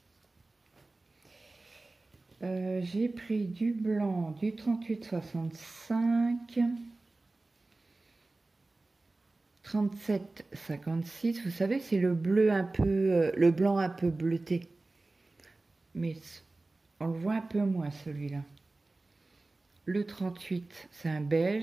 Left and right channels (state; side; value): quieter; left; 3.1 dB